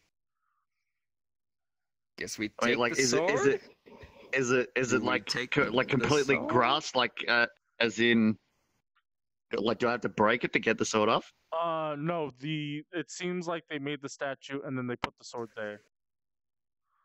Guess we take like the sword. Is it like completely sword? grass, like as in, like, do I have to break it to get the sword off? No. It seems like they made the statue and then they put the sword there.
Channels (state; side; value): identical; both; correlation 1.00